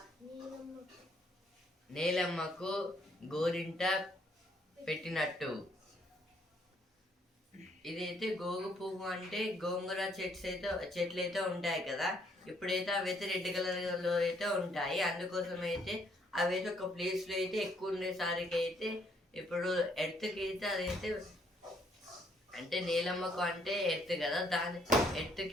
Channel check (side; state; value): both; normal; correlation 0.69